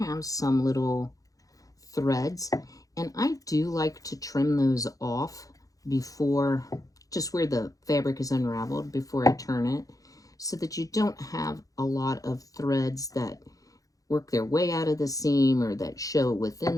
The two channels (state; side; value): late; right; 0.17 ms